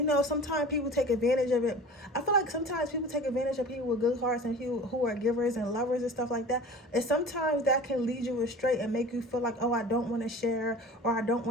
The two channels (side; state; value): both; normal; correlation 0.40